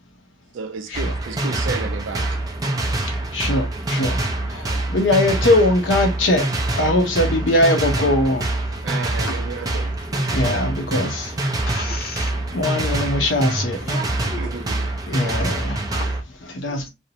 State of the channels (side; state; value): both; normal; correlation 0.38